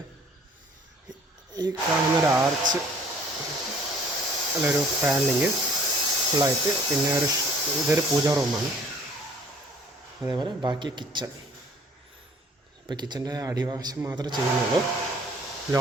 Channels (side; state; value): both; normal; correlation 0.55